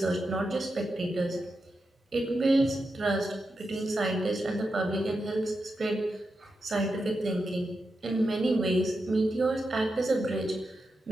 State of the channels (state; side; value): normal; both; correlation 0.88